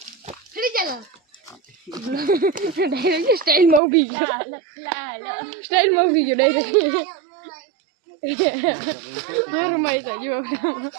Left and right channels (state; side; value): drops out; left; at 3.8 s